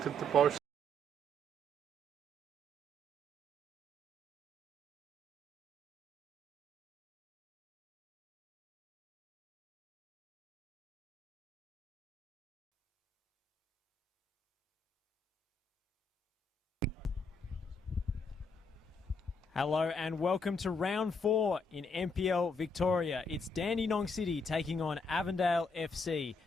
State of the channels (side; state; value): both; normal; correlation 0.74